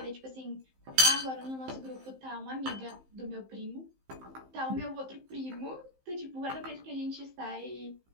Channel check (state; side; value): late; left; 15 ms